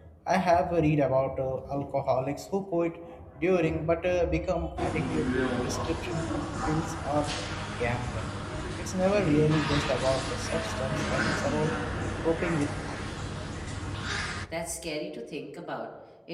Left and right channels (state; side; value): identical; both; correlation 1.00